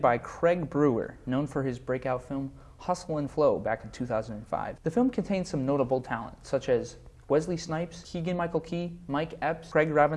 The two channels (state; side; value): identical; both; correlation 1.00